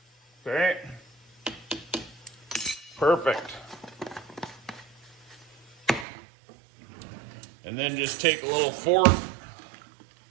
Okay. Perfect. And then just take a little fork,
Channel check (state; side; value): drops out; left; at 6.1 s